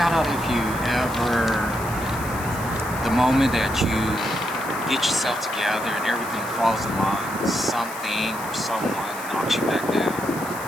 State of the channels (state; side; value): noise; left; hiss, 14 dB below the sound